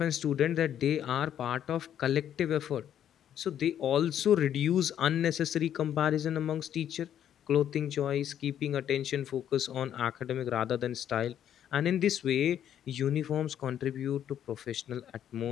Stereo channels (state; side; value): quieter; right; 10.1 dB